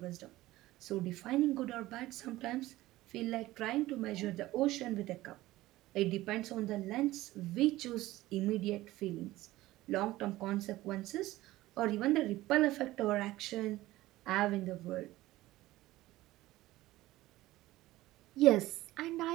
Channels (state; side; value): quieter; left; 17.0 dB